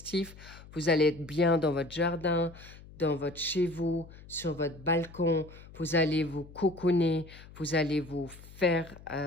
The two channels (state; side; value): noise; left; hum, 19 dB below the sound